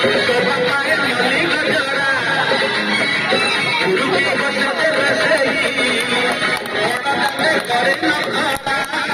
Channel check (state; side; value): identical; both; correlation 1.00